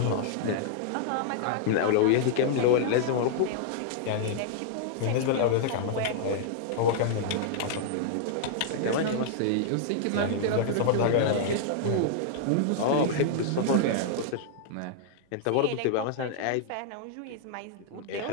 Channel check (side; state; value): both; different; correlation -0.01